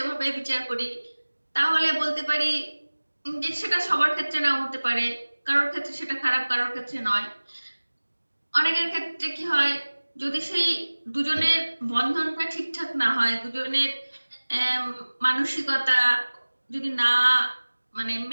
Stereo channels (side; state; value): both; inverted; correlation -1.00